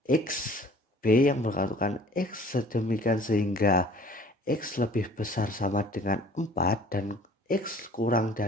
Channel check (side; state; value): both; normal; correlation 0.51